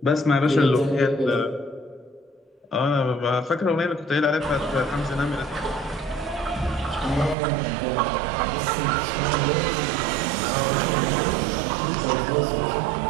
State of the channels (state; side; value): drops out; left; at 7.4 s